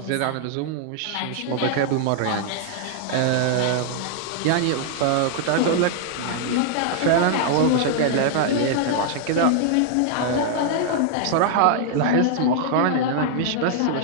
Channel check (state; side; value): different; both; correlation -0.01